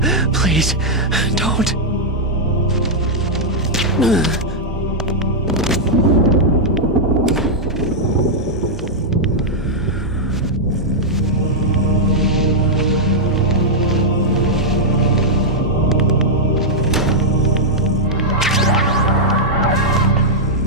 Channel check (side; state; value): both; normal; correlation -0.05